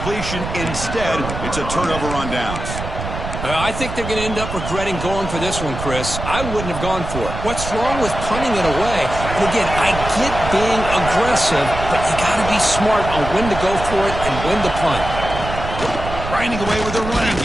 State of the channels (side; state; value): right; noise; rumble, 7 dB below the sound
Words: Instead, it's a turnover on downs. I think they're going to end up regretting going for this one, Chris. I wouldn't have gone for it. What's wrong with punting it away? And again, I get being aggressive, but you got to be smart on when to go for it and when to punt. Grinding away with a running